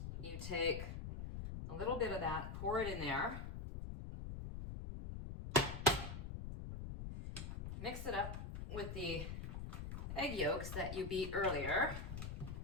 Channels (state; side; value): noise; left; rumble, 6 dB below the sound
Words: you take a little bit of that, pour it in there, mix it up with the egg yolks that you beat earlier.